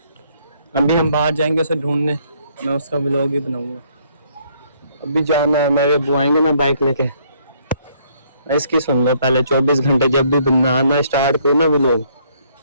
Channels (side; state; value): both; inverted; correlation -0.67